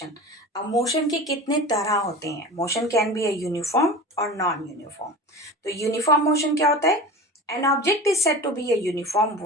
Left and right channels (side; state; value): both; normal; correlation 0.32